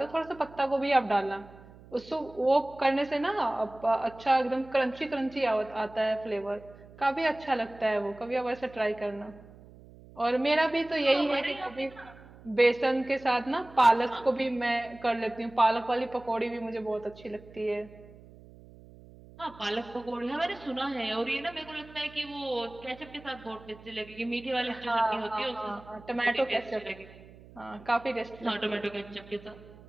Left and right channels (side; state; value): right; noise; hum, 21 dB below the sound